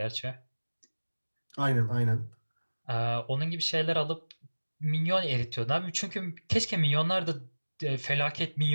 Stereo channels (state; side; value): inverted; both; correlation -1.00